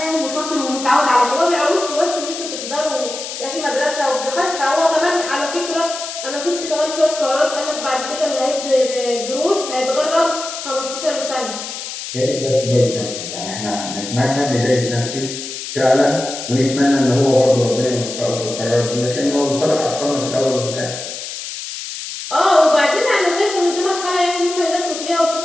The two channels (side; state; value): left; noise; hiss, 8 dB below the sound